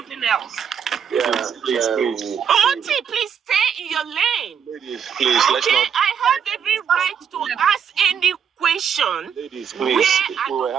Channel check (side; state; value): left; quieter; 7.6 dB